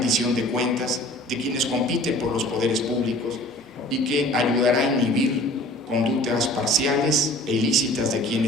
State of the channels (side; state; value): both; normal; correlation 0.47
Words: de cuentas de quienes compiten por los poderes públicos y que ayudará a inhibir conductas parciales e ilícitas de